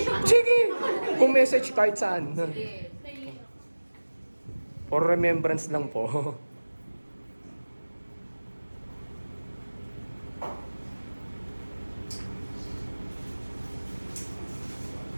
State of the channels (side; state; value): both; inverted; correlation -1.00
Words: Sige! Kung message kahit saan. Sige. For remembrance lang po.